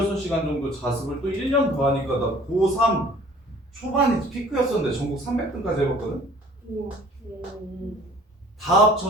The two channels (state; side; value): normal; both; correlation 0.51